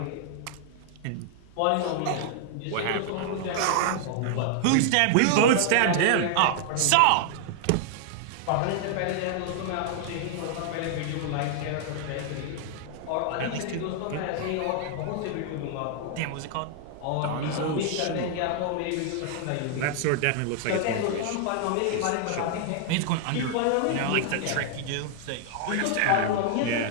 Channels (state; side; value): different; both; correlation 0.00